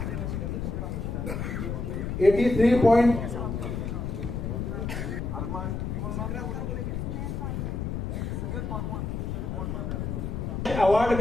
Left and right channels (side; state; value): left; noise; rumble, 3 dB below the sound